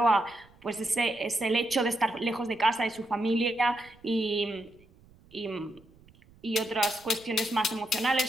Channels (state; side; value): noise; right; rumble, 27 dB below the sound